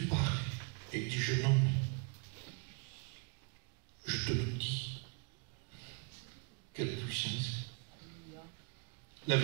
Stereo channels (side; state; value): left; quieter; 35.4 dB